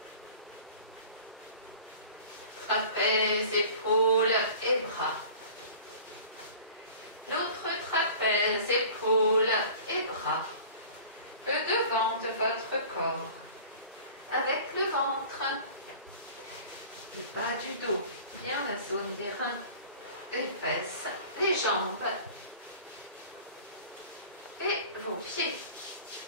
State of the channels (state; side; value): inverted; both; correlation -0.43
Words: trapèze, épaules et bras. L'autre trapèze, épaules et bras. Le devant de votre corps, avec le ventre, le bas du dos, bien la zone des reins, les fesses, les jambes et vos pieds.